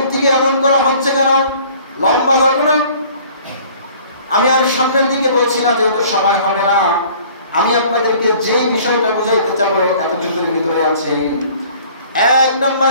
এমন করা হচ্ছে কেন? লম্বা ঘটনা, আমি আর সামনের দিকে বলছি না, যেহেতু সময় হবে না। আমি আপনাদেরকে যে বিষয়টা বুঝাইতে চাবো এতটুকুর ভিতরে আছে। এক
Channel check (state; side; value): inverted; both; correlation -0.52